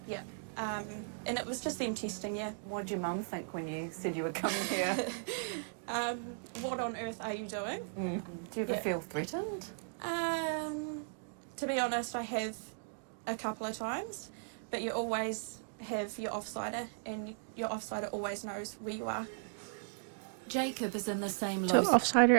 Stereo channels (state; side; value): silent; left; digital silence